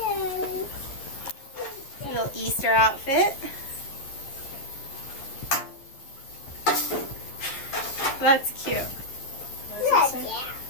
Little Easter outfit. That's cute.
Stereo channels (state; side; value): late; right; 11 ms